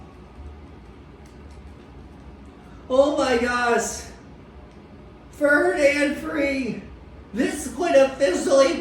Oh my gosh. 3rd and 3. This would officially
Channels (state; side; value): identical; both; correlation 1.00